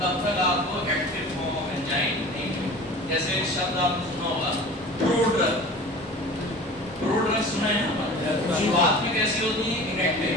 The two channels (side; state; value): both; normal; correlation 0.39